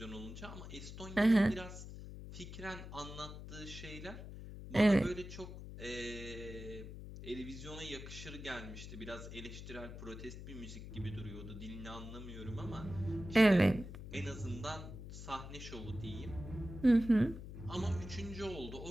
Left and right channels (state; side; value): noise; left; hum, 11 dB below the sound